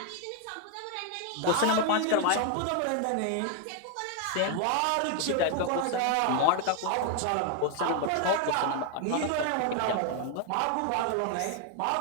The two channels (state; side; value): different; both; correlation 0.01